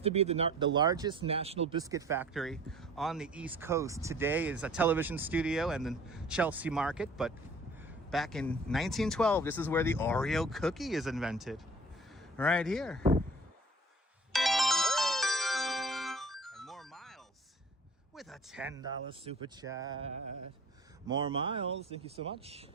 to be the largest national biscuit factory on the East Coast. Today is a television studio and the Chelsea Market, but back in 1912, this is where the Oreo cookie is invented. Right here. And more Miles with a $10 super chat. More Miles, thank you so much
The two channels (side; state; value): both; normal; correlation 0.48